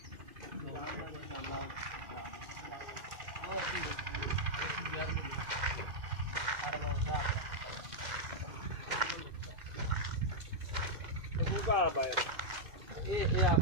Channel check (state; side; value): late; left; 2.1 ms